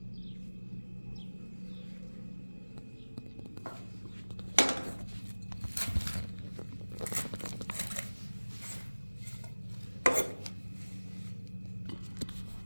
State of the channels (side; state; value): both; inverted; correlation -1.00